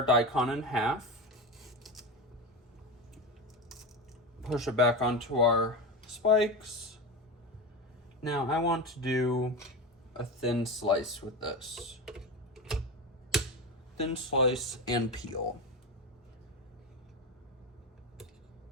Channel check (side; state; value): both; normal; correlation 0.21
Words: daikon in half. Push it back onto our spikes. Now I want to do a thin slice with this. Thin slice and peel.